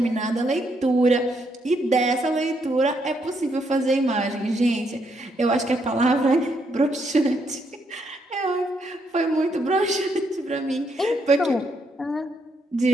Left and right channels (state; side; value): normal; both; correlation 0.76